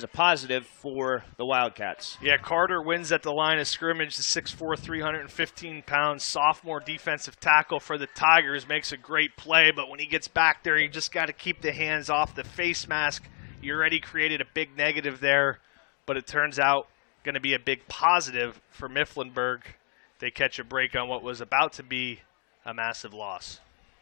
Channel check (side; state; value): right; quieter; 34.2 dB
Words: a positive for the Wildcats. Yeah, Carter wins at the line of scrimmage, the 6'4", 315-pound sophomore defensive tackle for the Tigers. Makes a great play, but when he gets back there, you just got to keep the hands off the face mask. You already created a big negative there, but it turns out going to be a big positive for Mifflinburg. They catch a break on what was about to be a massive loss.